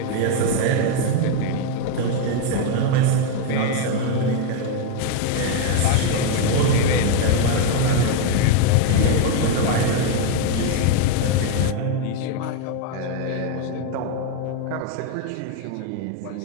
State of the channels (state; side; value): different; both; correlation 0.01